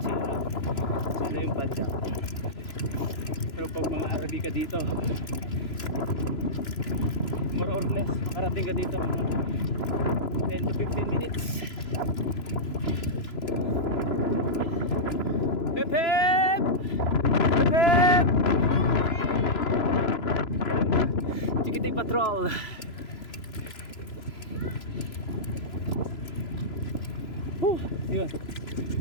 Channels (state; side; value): late; right; 3.0 ms